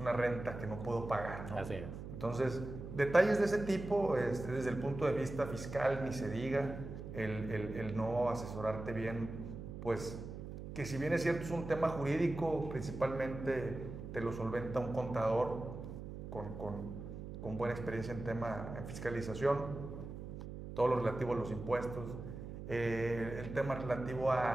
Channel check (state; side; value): noise; right; hum, 9 dB below the sound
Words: renta que no puedo pagar, ¿no? Así es. Entonces, detalles de ese tipo, desde el punto de vista fiscal, ni se diga, el no asesorarte bien, pues que si bien es cierto es un tema jurídico, principalmente te lo solventa un contador con buena experiencia en fiscalización, todo lo relativo a los impuestos, el tema relativo